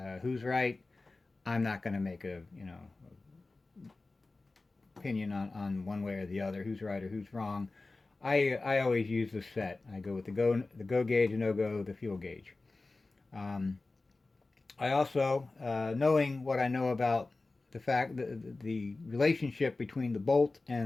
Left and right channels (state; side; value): quieter; right; 3.4 dB